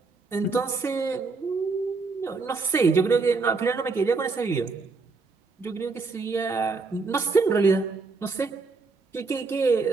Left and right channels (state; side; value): quieter; left; 4.2 dB